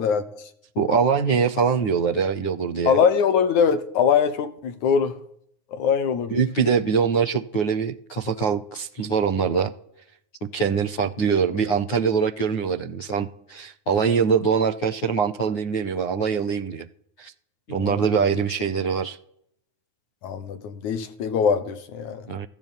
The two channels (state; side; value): late; right; 9.6 ms